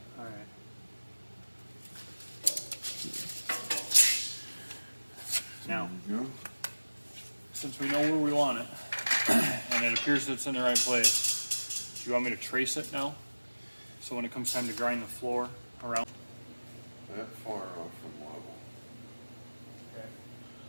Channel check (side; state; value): both; inverted; correlation -1.00